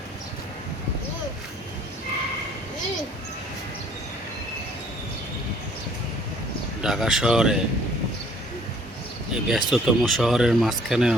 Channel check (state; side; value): normal; both; correlation 0.58